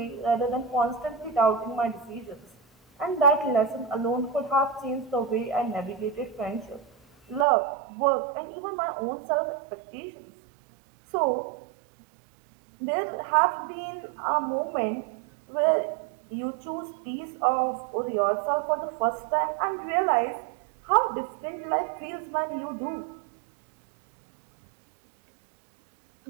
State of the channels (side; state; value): left; drops out; at 7.5 s